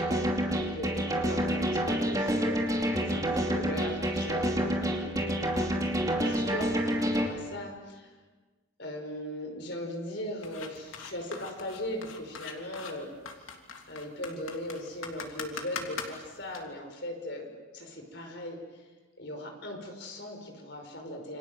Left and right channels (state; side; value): normal; both; correlation 0.56